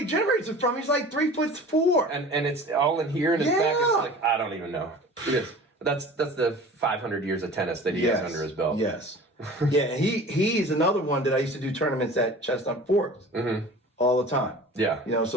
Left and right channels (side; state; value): both; normal; correlation 0.41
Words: generates it from. He's like 3'4". And it's all in here in his back. It's like I don't even know. It is. That's the 500 years of tennis that he has under his belt. Yes. Yeah, and he's another one that I used to do tournaments at Chestnut Forks all the time. Yeah. You know,